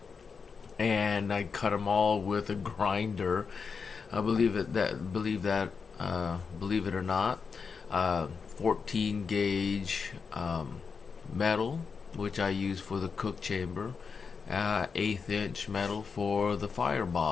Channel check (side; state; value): right; quieter; 5.5 dB